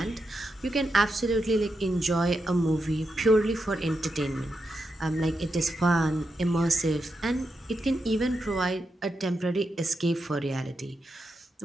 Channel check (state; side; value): normal; both; correlation 0.86